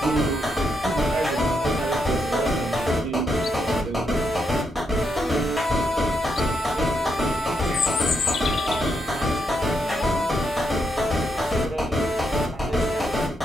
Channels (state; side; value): normal; both; correlation 0.80